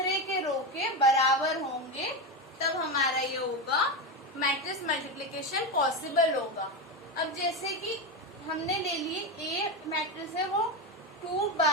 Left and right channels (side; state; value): both; normal; correlation 0.14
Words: के रो के बराबर होंगे, तब हमारा ये होगा मैट्रिक्स मल्टीप्लिकेशन पॉसिबल होगा। अब जैसे कि हमने ले लिए A मैट्रिक्स है वो